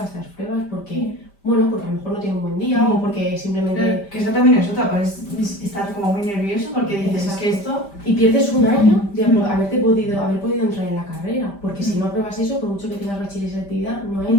estas pruebas porque, bueno, porque a lo mejor no tiene un buen día o porque simplemente... Claro, que eso también es otra, puedes estar como muy nervioso porque dices, es que esto... Y pierdes un año de haber podido entrar en la carrera, porque si no apruebas eso, por mucho que tengas bachiller y selectividad, no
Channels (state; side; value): late; right; 5.1 ms